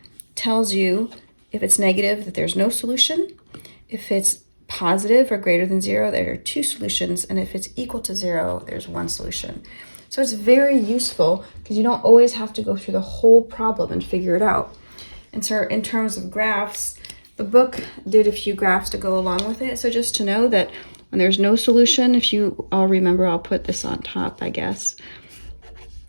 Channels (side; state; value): both; inverted; correlation -1.00